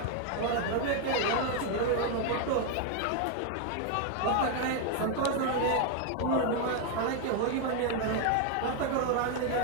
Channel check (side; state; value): both; different; correlation 0.01